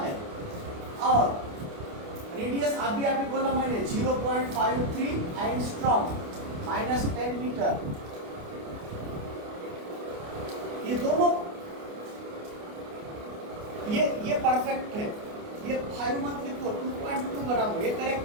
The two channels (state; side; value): late; left; 29 ms